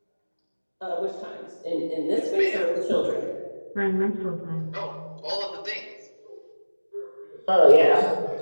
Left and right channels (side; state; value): both; inverted; correlation -1.00